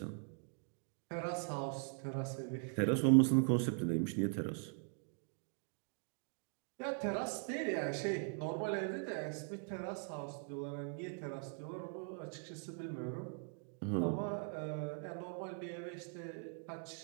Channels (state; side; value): silent; left; 50 dB below the other